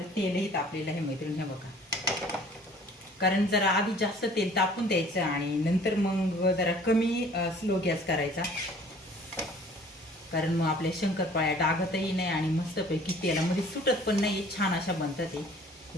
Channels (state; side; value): normal; both; correlation 0.52